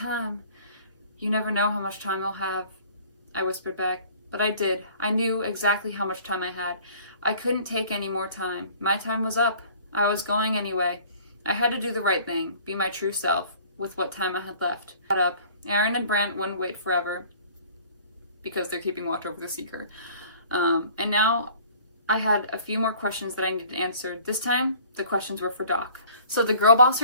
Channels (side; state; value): both; inverted; correlation -0.51